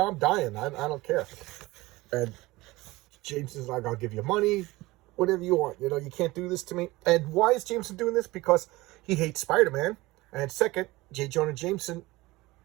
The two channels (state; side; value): quieter; left; 20.2 dB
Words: dying. I don't care. And Jameson's like, I'll give you money, whatever you want. You can't do this to me. And why is Jameson doing this? Because he hates Spider-Man. And second, J. Jonah Jameson